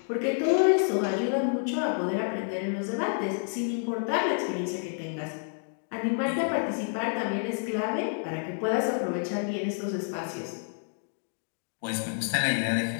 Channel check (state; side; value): silent; right; 59 dB below the other